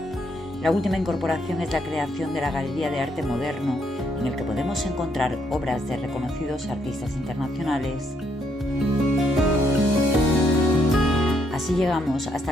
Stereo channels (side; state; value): both; normal; correlation 0.74